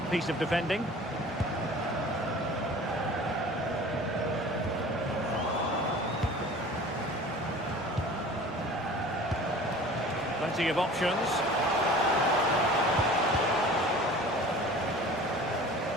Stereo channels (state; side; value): normal; both; correlation 0.43